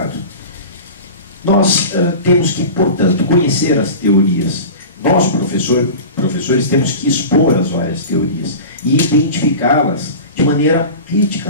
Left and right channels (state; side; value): inverted; both; correlation -0.33